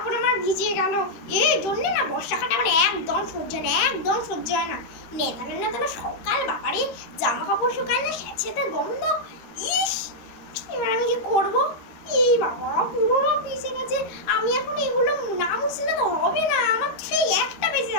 আমার ভিজে গেল। এই জন্য না বর্ষাকালে আমার একদম সহ্য হয় না, একদম সহ্য হয় না। নেতানো নেতানো সকাল, বাবারে জামা কাপড় শুকায় না, স্যাঁতস্যাঁতে গন্ধ। ইস, এবার আমি কি করবো? এই বাবা, পুরো ভিজে গেছে। আমি এখন এগুলো না মুছলে তো হবে না, আমার সেই একটা বেজে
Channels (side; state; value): right; late; 13 ms